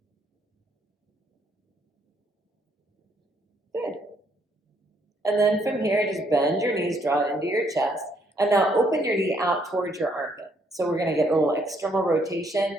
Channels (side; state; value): both; normal; correlation 0.70